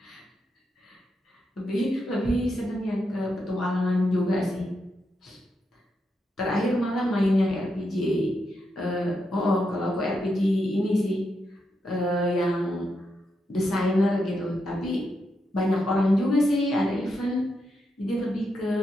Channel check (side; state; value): both; normal; correlation 0.83